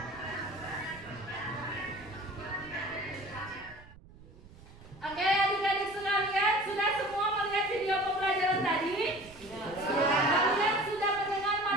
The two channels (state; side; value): noise; right; rumble, 21 dB below the sound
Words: Oke, adik-adik sekalian, sudah semua melihat video pembelajaran tadi? Kalian sudah mendengar